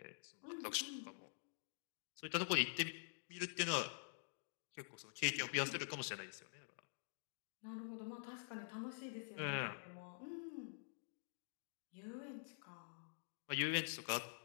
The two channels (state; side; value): silent; right; digital silence